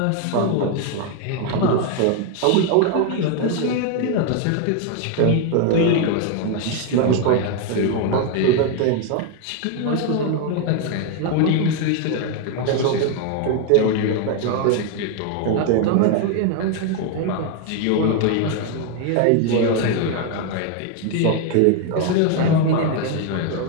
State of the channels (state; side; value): different; both; correlation 0.01